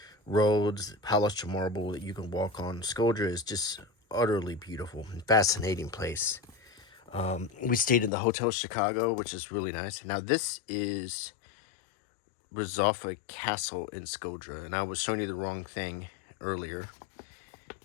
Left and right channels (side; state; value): right; drops out; at 8.1 s